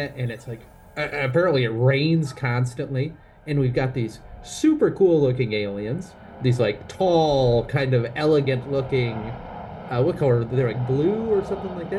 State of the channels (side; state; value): both; identical; correlation 1.00